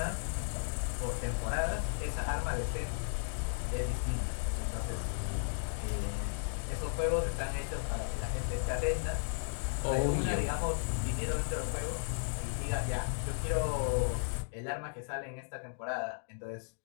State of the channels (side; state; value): right; silent; digital silence